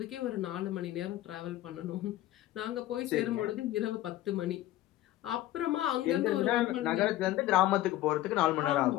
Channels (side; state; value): right; quieter; 15.1 dB